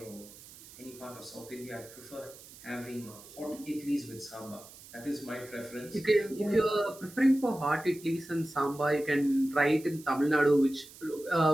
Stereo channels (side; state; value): right; noise; hiss, 19 dB below the sound